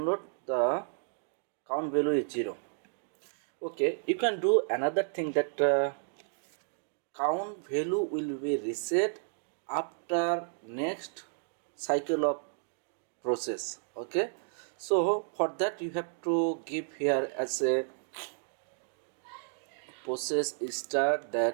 the count value is 0. Okay, you can do another thing, that count value will be reset after next cycle of process. Okay, so for that you have to give here as a process start,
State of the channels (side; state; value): left; silent; digital silence